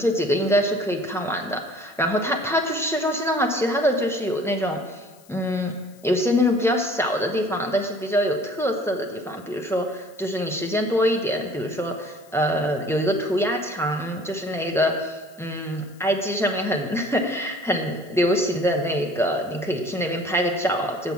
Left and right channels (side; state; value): left; noise; hiss, 27 dB below the sound